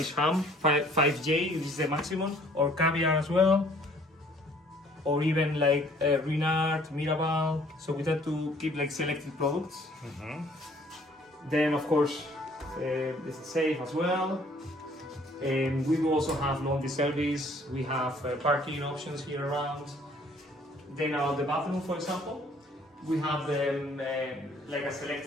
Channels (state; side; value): normal; both; correlation 0.58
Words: ham, 5J, which is the maximum, or caviar as well, or even like Renard, Mirabal. So we try to keep like selected products. Then, of course, this is safe as well. And we do also have laundry service. We have parking options here around. Then, the bathroom, for example. We have like a